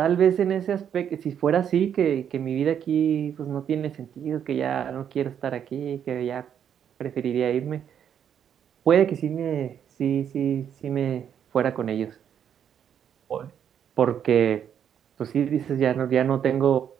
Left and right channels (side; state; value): left; quieter; 8.8 dB